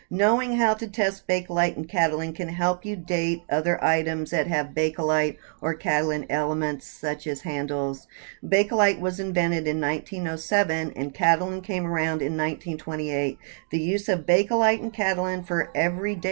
Knowing how to test Bakelite and Catalan can help you date other items that have Bakelite or Catalan elements, such as handles. Bakelite was invented in 1907 and Catalan came around in 1928. The use of Bakelite and Catalan for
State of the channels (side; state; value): left; silent; 59 dB below the other